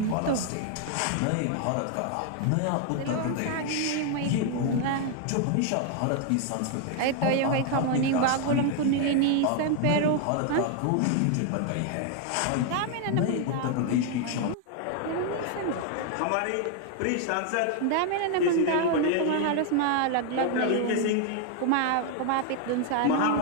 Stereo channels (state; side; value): different; both; correlation 0.00